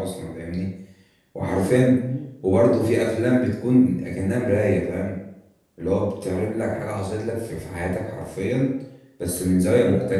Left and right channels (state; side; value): identical; both; correlation 1.00